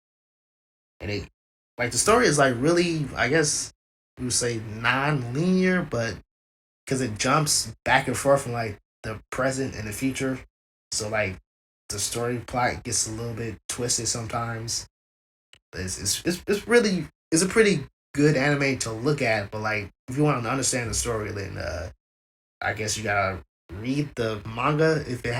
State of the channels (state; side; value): identical; both; correlation 1.00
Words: and it like the story is like really, I guess we would say non-linear, but because it jumps back and forth from like the present and the future. So like the story plot gets a little bit twisted sometimes. It's really it's a pretty good anime to look at, but like if you want to understand the story, then I guess you gotta read the manga if it